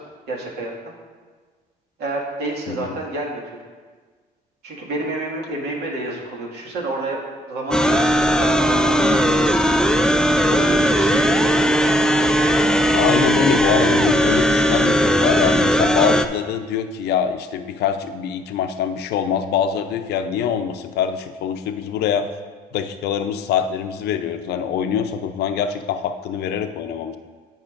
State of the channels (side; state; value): both; normal; correlation 0.63